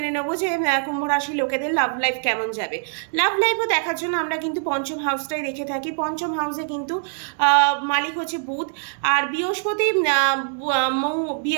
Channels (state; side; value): silent; left; 58 dB below the other